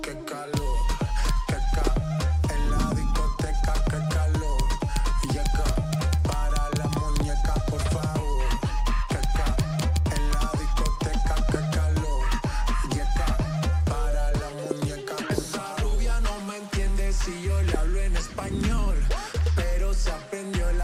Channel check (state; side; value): identical; both; correlation 1.00